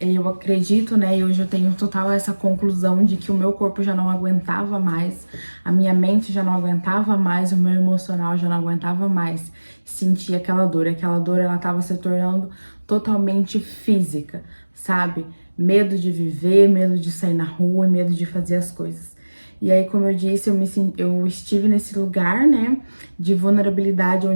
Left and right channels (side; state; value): both; inverted; correlation -1.00